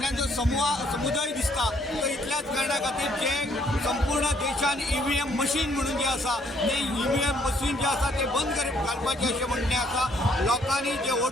जो समुदाय दिसता तो इतल्याच कारणां खातीर जे संपूर्ण देशान EVM मशीन म्हणून जे आसा ते EVM मशीन जे आसा ते बंद घालपाचें अशें म्हणणें आसा। लोकांनी जे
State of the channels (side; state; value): both; normal; correlation 0.66